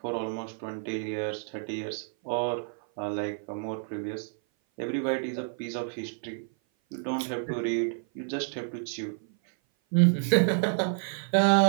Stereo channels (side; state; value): left; silent; 56 dB below the other